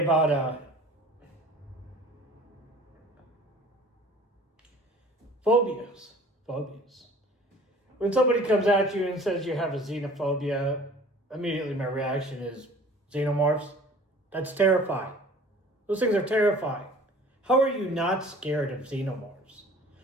phobias. Phobias. When somebody comes at you and says you have a xenophobia, immediately my reaction is xenomorphs. That's terrifying. Those things are terrifying. How are you not scared of xenomorphs?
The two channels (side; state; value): both; normal; correlation 0.48